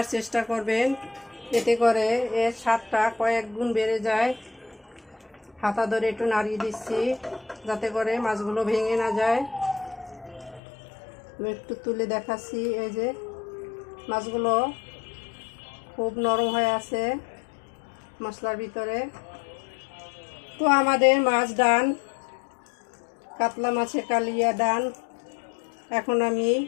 চেষ্টা করবেন, এতে করে এর স্বাদটা কয়েক গুণ বেড়ে যায়। হাতা ধরে একটু নাড়িয়ে দিচ্ছি যাতে করে মাছগুলো ভেঙে না যায়। আমি একটু তুলে দেখাচ্ছি, এই যে মাছগুলো খুব নরম হয়ে আছে মশলার ভিতরে। তো আমাদের মাছ ডান, কাতলা মাছের কালিয়া ডান। এখন আমি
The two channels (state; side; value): drops out; right; at 10.6 s